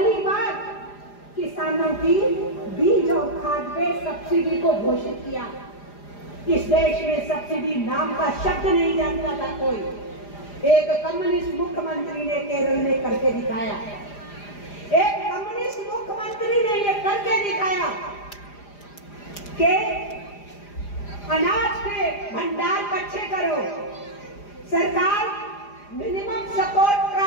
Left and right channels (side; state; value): right; late; 4.9 ms